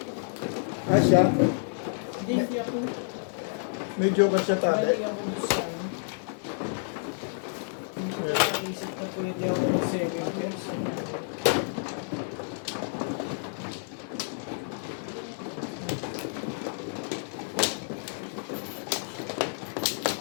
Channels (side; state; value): right; silent; digital silence